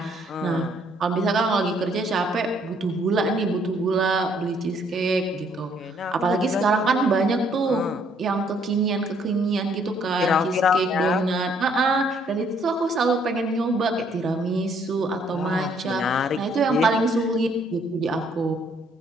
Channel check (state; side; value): normal; both; correlation 0.66